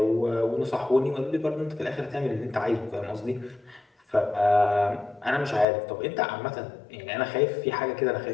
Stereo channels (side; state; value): right; drops out; at 5.7 s